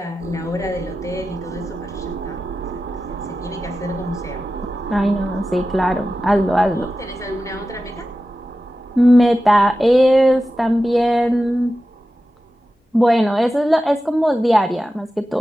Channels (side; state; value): both; normal; correlation 0.93